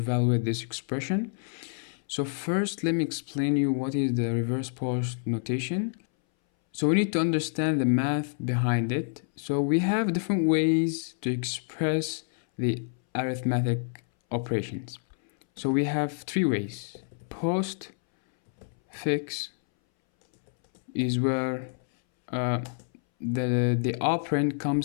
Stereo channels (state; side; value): silent; right; 59 dB below the other